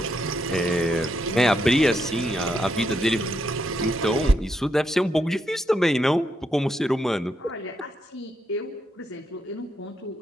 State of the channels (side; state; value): both; normal; correlation 0.80